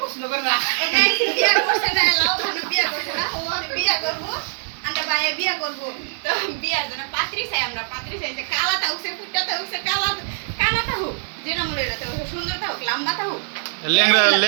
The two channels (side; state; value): left; silent; 64 dB below the other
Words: প্রশ্ন করে না বিয়া করছে না লাও ভালো বিয়া করছে না ও বিয়া করবো আমরা ভাইয়া বিয়া করবো তো বিয়ার জন্য পাত্রী চাই আমরা পাত্রী চাইছে কালাটা উঠছে ফুটটা উঠছে কালাটা হোক যেটা মনে এটা হোক সুন্দরটা হোক লম্বাটা হোক